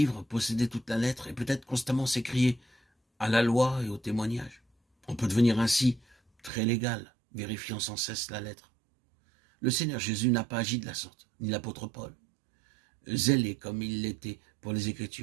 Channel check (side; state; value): left; drops out; at 6.5 s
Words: posséder toute la lettre et peut-être constamment s'écrier à la loi et au témoignage. On peut devenir ainsi très légal, vérifiant sans cesse la lettre. Le Seigneur Jésus n'a pas agi de la sorte, ni l'apôtre Paul, zélé comme il l'était pour les